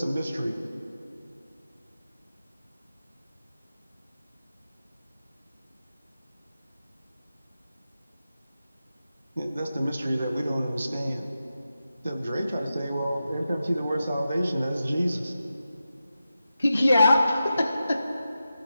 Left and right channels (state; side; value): inverted; both; correlation -0.91